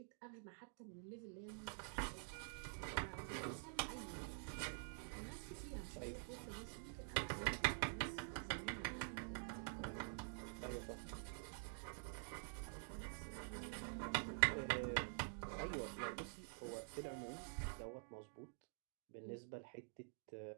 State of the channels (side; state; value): left; silent; digital silence